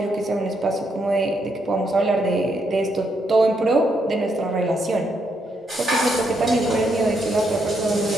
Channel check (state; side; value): normal; both; correlation 0.77